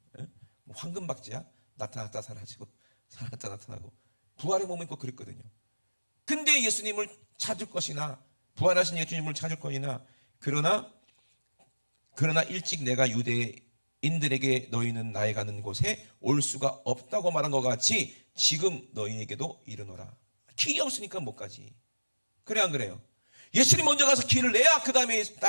뭐 황금박쥐야? 나타났다 사라지고 사라졌다 나타나고. 부활의 몸은 꼭 그랬거든요. 근데 예수님을 찾을 것이나 부활하신 예수님을 찾을 것이나 그러나 일찍 내가 유대인들에게 너희는 나의 가는 곳에 올 수가 없다고 말한 것 같이 지금 너희에게도 이르노라. 길이 없으니까 못 가지. 그래 안 그래요? 예수님 먼저 가서 길을 내야 그 다음에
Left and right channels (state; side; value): inverted; both; correlation -1.00